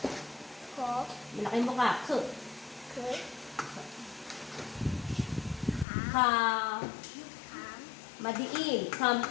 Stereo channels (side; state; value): right; drops out; at 5.9 s